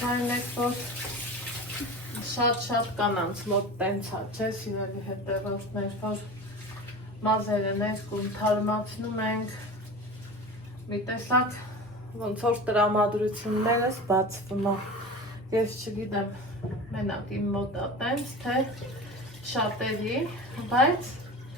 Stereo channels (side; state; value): both; normal; correlation 0.32